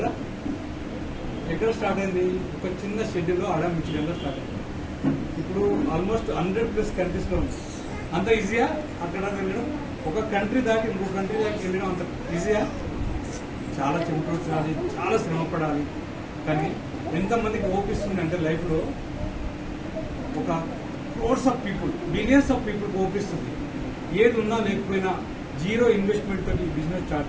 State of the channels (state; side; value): identical; both; correlation 1.00